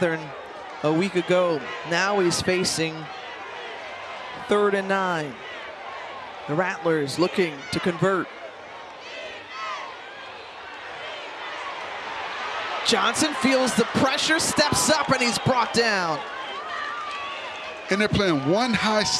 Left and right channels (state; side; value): identical; both; correlation 1.00